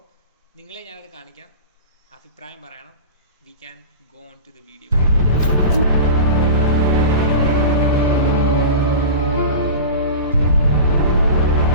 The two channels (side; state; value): both; inverted; correlation -0.30